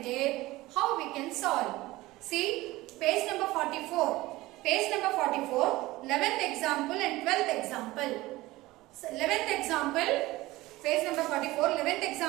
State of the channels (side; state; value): left; quieter; 18.9 dB